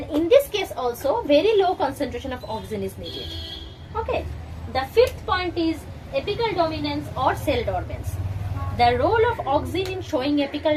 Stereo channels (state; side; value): identical; both; correlation 1.00